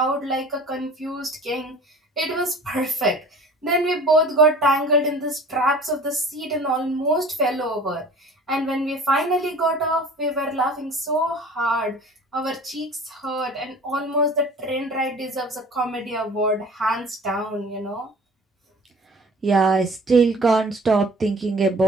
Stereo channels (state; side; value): normal; both; correlation 0.45